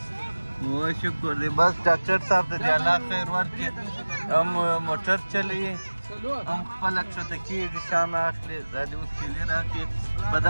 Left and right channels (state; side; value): inverted; both; correlation -1.00